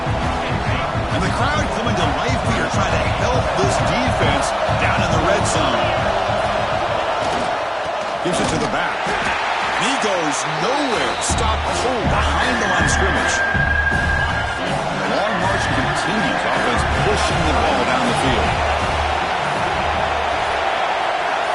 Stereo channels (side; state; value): both; identical; correlation 1.00